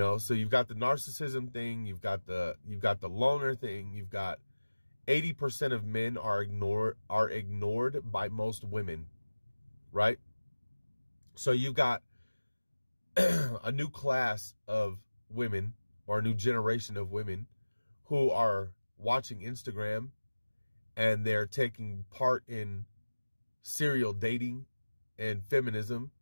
you've got the narcissism thing, you've got the loner thing, you've got 80% of men are ignored by most women, right? So you've got a new class of women, or a new generation of women, who are watching Instagram and they're taking part in serial dating and feminism,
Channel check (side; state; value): both; inverted; correlation -1.00